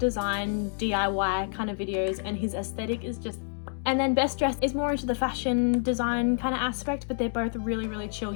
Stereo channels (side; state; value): right; silent; 59 dB below the other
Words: DIY kind of videos, and his aesthetic is just... And then Best Dressed is more into the fashion design kind of aspect, but they're both really chill